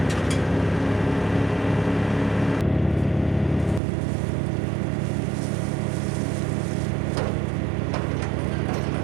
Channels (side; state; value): left; drops out; at 3.8 s